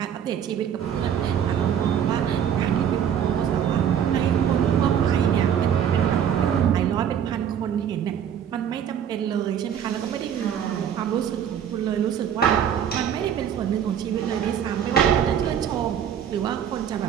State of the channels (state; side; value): quieter; left; 8.9 dB